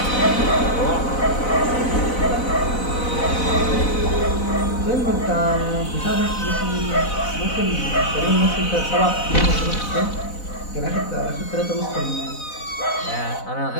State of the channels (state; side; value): late; right; 4.0 ms